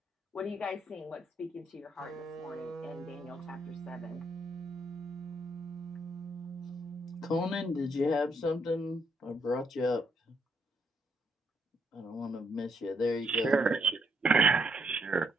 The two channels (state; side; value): normal; both; correlation 0.74